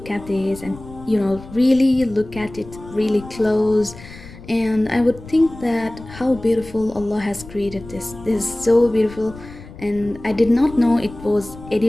at this and really look at it really close, and I would think that how beautiful Allah has created this. This is so beautiful, and I did not know it was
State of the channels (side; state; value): left; noise; rumble, 17 dB below the sound